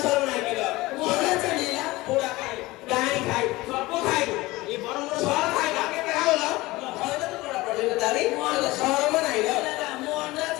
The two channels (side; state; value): right; quieter; 20.0 dB